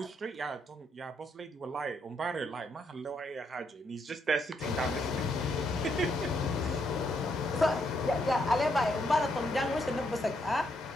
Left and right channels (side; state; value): both; normal; correlation 0.76